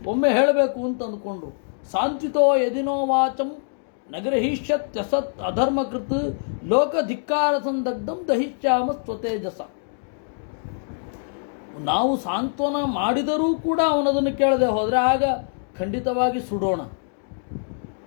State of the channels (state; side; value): silent; right; digital silence